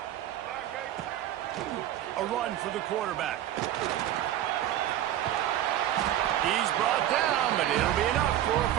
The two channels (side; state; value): left; quieter; 12.3 dB